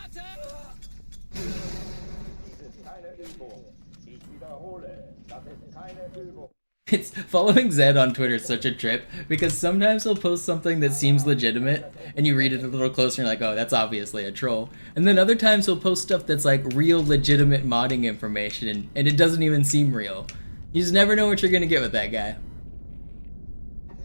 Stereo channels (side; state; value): both; inverted; correlation -1.00